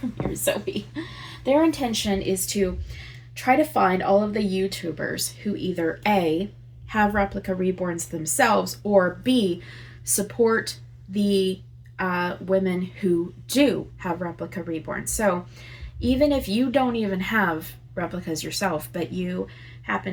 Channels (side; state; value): both; identical; correlation 1.00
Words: here, Zoe. Their intention is to try to find all of the YouTubers who either A, have replica reborns themselves, or B, support the women who do have replica reborns. So even if you don't even have replicas yourself, but you